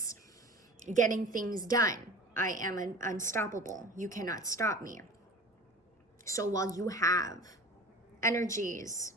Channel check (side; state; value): both; normal; correlation 0.39